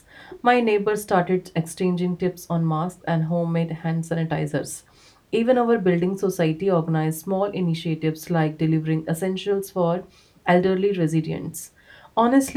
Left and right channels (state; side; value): identical; both; correlation 1.00